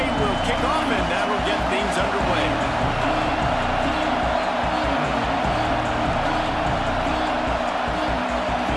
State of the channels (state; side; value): identical; both; correlation 1.00